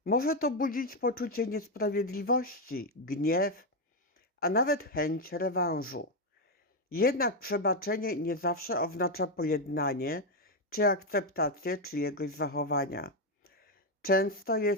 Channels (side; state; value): both; normal; correlation 0.05